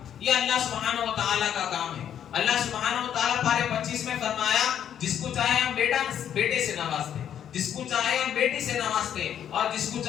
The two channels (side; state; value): right; quieter; 9.5 dB